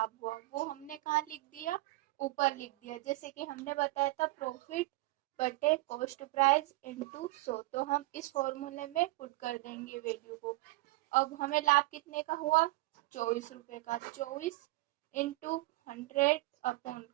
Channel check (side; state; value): left; quieter; 20.6 dB